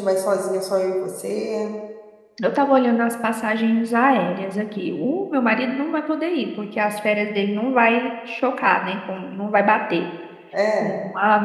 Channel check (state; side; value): identical; both; correlation 1.00